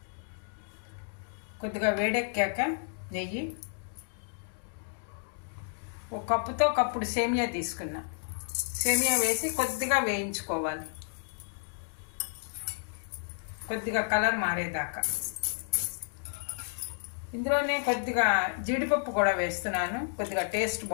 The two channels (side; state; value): right; silent; digital silence